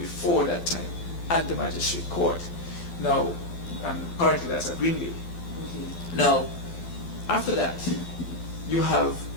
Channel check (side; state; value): right; late; 12 ms